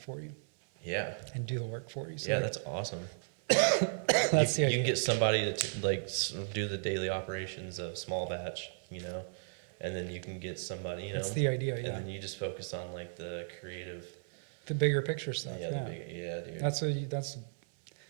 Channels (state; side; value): silent; left; 55 dB below the other